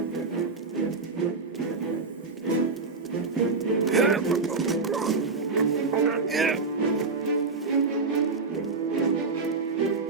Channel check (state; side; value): quieter; left; 4.2 dB